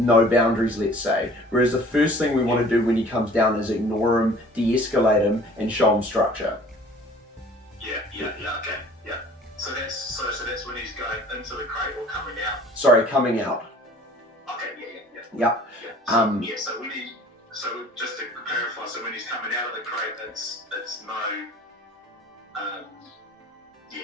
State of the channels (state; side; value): normal; both; correlation 0.49